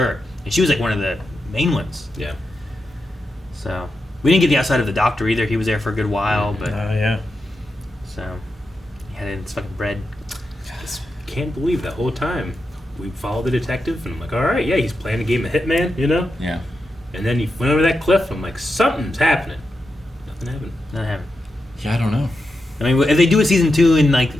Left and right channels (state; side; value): normal; both; correlation 0.88